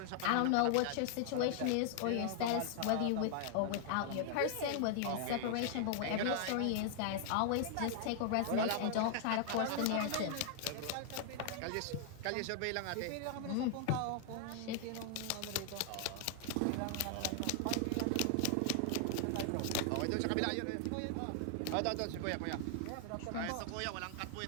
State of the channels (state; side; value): different; both; correlation 0.00